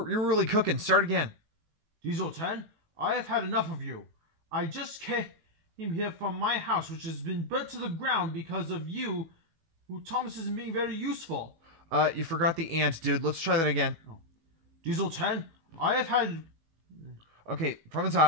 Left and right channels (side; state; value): left; late; 18 ms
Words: really cooking. Start again. Diesel 10, I have had enough of you. I just came here from my house, which has been burnt to the ground because of you, Thomas isn't being very useful. You forgot the ant, dude. Let's try that again. Oh. Diesel 10, I have had... Okay, from the